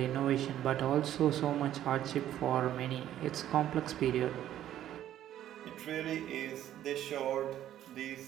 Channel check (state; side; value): quieter; left; 11.9 dB